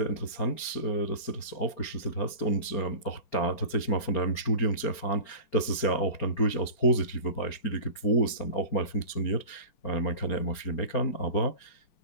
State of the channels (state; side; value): late; right; 4.4 ms